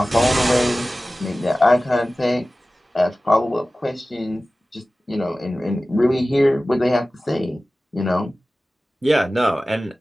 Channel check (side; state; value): both; normal; correlation 0.96